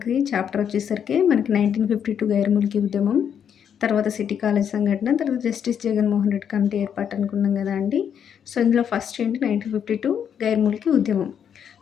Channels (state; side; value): quieter; right; 8.3 dB